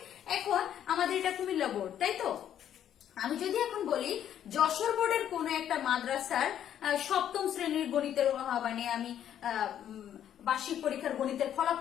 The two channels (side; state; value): right; quieter; 10.3 dB